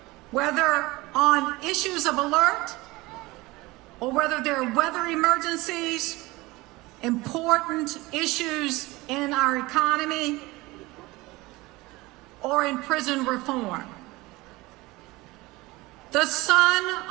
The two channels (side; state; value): left; quieter; 21.3 dB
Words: whether on issues of alert or whether there are weather emergencies, important issues in our economy, or in prison reform. The son